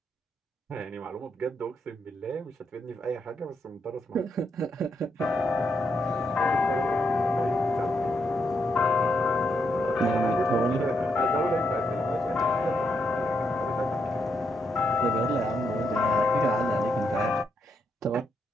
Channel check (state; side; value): normal; both; correlation 0.79